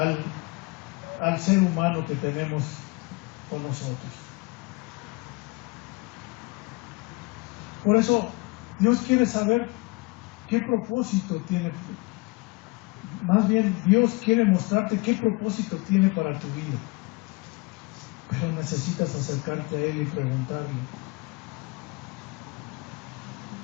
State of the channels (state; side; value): quieter; right; 25.7 dB